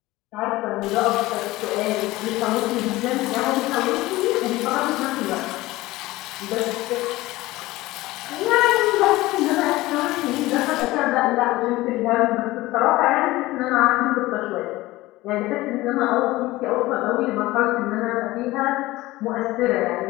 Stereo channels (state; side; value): quieter; right; 18.6 dB